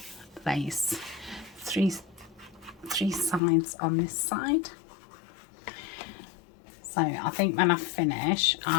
lace, three sides on this side. So I think when I finish,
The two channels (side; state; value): right; drops out; at 3.4 s